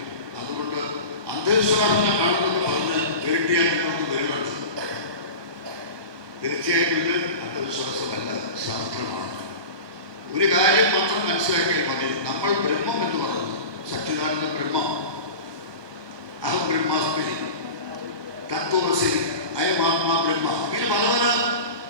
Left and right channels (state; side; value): late; left; 1.2 ms